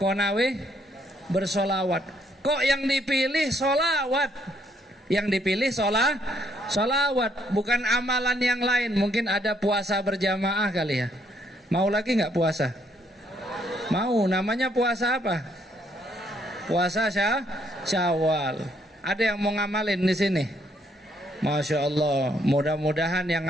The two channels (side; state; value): both; normal; correlation 0.70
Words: bersolawat. Kok yang dipilih solawat? Yang dipilih solawat, bukan amalan yang lain. Mungkin ada puasa berjamaah kali ya. Mau lagi nggak puasa? Mau. Namanya puasa apa? Puasa Syawal. Ada yang mau ngamalin di sini? Masya Allah. Mudah-mudahan yang